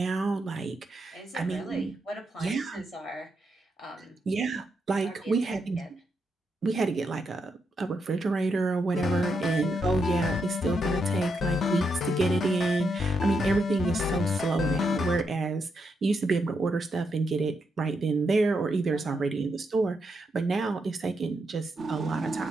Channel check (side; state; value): both; normal; correlation 0.81